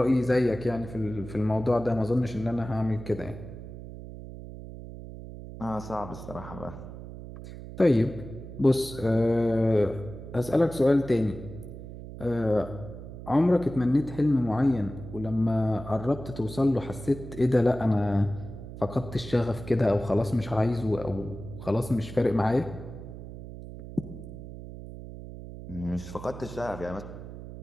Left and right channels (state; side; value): noise; right; hum, 12 dB below the sound